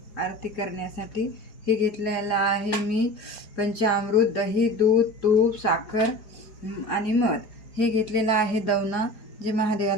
आरती करण्यासाठी. हे घेतलेलं आहे मी पंचामृत, दही, दूध, तूप, साखर आणि मध. हे घेतलेलं आहे दवना, जे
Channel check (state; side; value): late; right; 4.8 ms